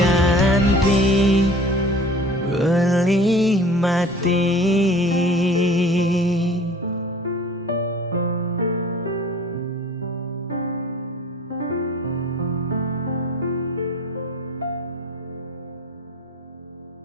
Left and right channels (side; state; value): both; normal; correlation 0.45